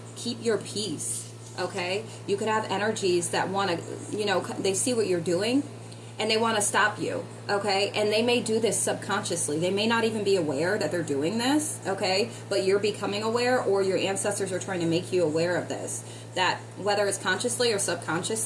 Keep your peace, okay? You could have energies that want to, they see what you're doing, and they want to stop you, okay? And they may do this subconsciously. They may not even be aware that they're doing this, okay? But you're becoming aware, or your ancestors are trying to make you aware of this. That whether it's consciously or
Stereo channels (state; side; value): identical; both; correlation 1.00